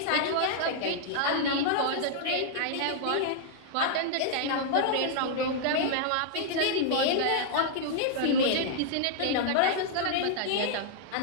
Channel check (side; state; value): both; different; correlation -0.01